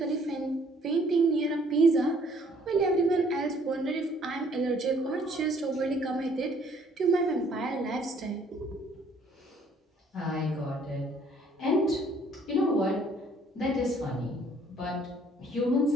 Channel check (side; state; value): both; normal; correlation 0.61